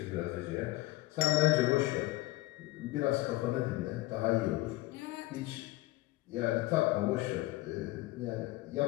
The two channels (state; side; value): quieter; right; 18.4 dB